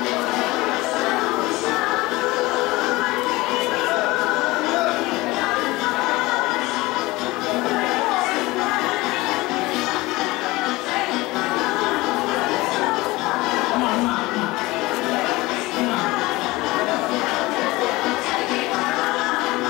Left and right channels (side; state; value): right; quieter; 20.7 dB